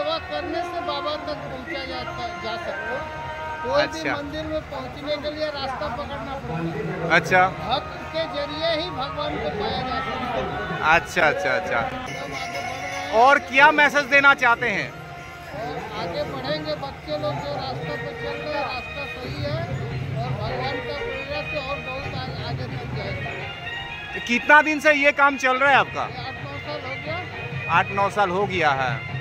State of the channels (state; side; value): identical; both; correlation 1.00